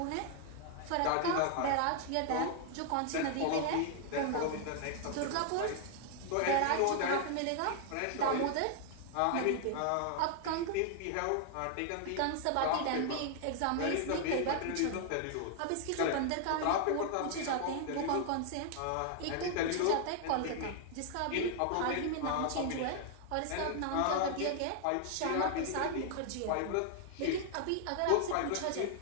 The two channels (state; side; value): different; both; correlation 0.00